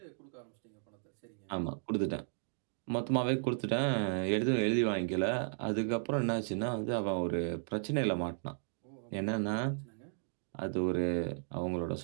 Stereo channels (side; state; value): left; silent; digital silence